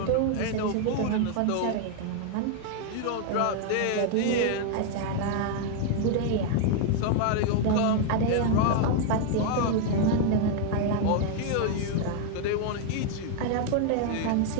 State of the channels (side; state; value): both; different; correlation 0.00